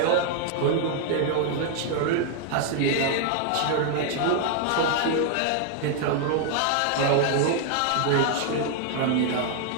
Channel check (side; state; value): both; different; correlation 0.00